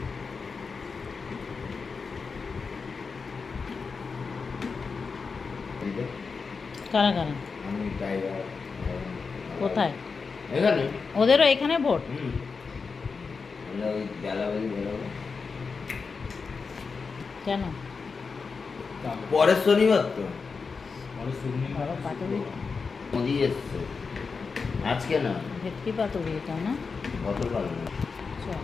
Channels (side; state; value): right; quieter; 4.9 dB